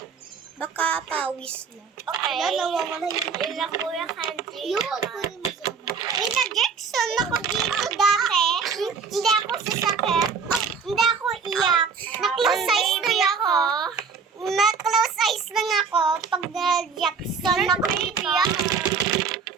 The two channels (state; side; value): quieter; left; 5.6 dB